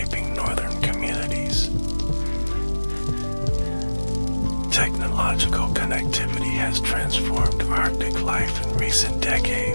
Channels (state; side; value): inverted; both; correlation -1.00